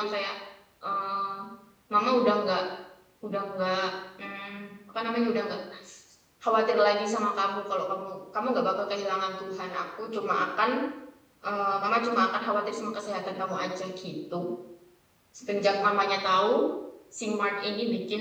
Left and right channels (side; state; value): both; identical; correlation 1.00